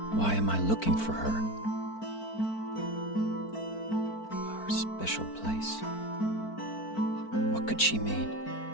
why am I looking for her? Our special place. What could she mean?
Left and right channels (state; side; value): late; right; 4.5 ms